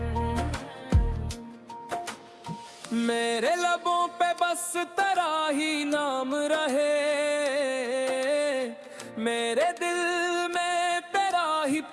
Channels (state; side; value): identical; both; correlation 1.00